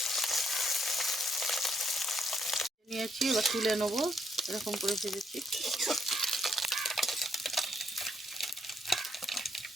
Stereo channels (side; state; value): both; normal; correlation 0.74